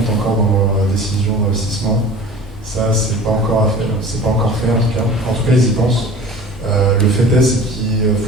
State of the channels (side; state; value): both; normal; correlation 0.41